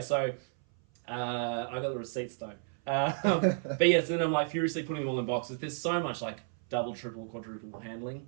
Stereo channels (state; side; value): silent; left; 56 dB below the other